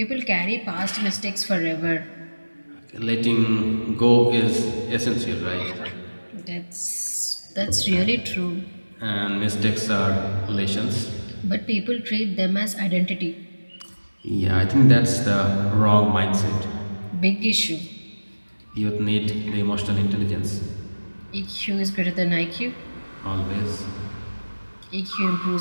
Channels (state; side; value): inverted; both; correlation -1.00